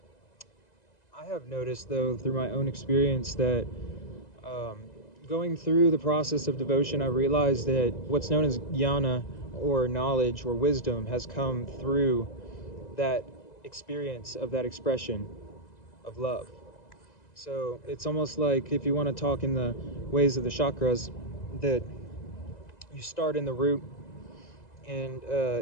I have noticed though through my own experience that going through the process of devotion, I realized that what's known as jnana or knowledge or wisdom has come through that experience of that expression of love. So it's almost like if you want to talk in the ways of the chakras, that you start in the root and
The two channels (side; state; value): right; late; 2.0 ms